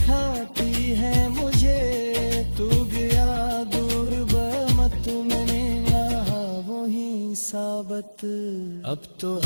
है मुझे, तू गया दूर बमत मैंने यहाँ वही साबत। अब तो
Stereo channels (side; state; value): both; inverted; correlation -1.00